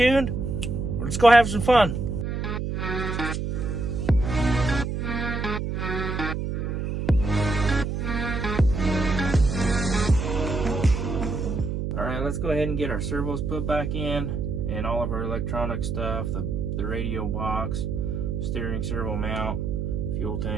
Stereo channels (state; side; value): noise; right; hum, 2 dB below the sound